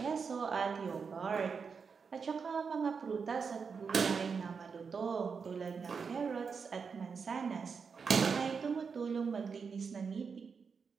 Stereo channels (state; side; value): quieter; left; 5.7 dB